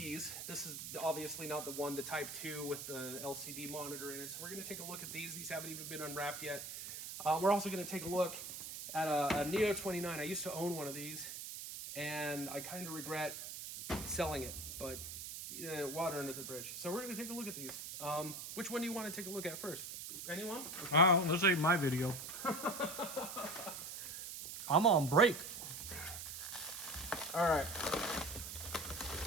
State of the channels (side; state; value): right; noise; hiss, 8 dB below the sound